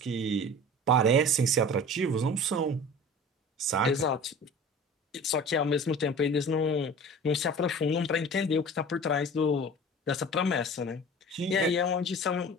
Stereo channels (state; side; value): normal; both; correlation 0.39